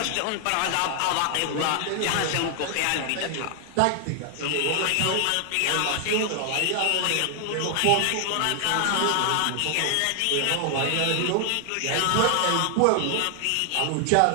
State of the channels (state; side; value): different; both; correlation 0.00